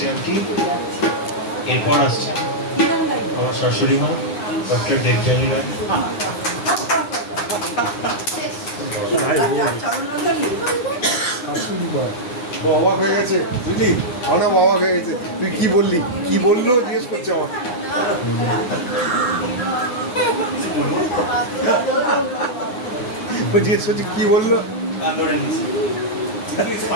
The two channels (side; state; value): right; late; 9.7 ms